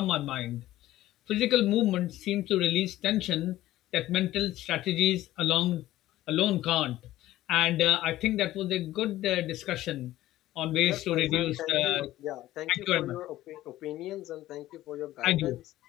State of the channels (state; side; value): quieter; right; 15.1 dB